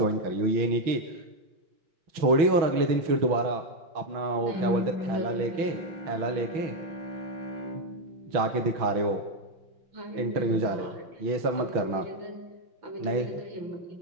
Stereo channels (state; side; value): late; left; 6.2 ms